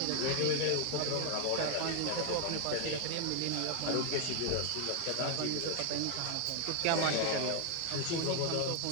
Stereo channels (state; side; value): different; both; correlation 0.00